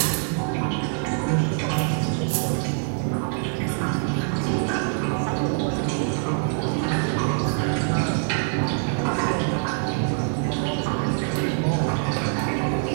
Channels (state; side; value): silent; left; 61 dB below the other